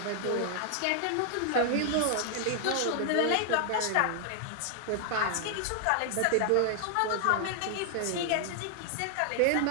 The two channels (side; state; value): both; different; correlation 0.00